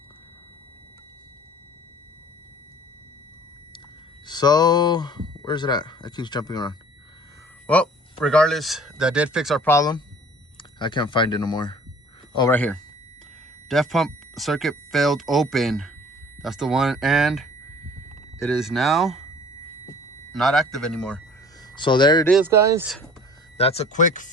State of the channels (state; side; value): normal; both; correlation 0.49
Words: So where's it at? It keeps jumping around. Well, regardless, that did fix our problem. I can't find it no more. Oh, right here. Def pump circuit failed open. That's the one, and it is now not active anymore. So there it is, guys. That's a quick